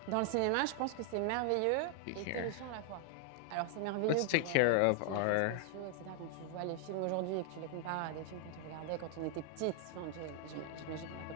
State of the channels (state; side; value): different; both; correlation 0.00